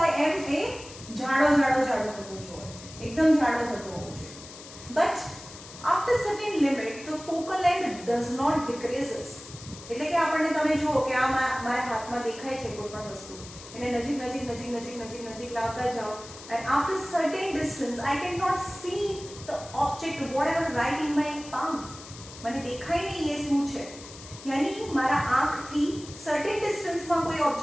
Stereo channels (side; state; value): left; noise; hiss, 16 dB below the sound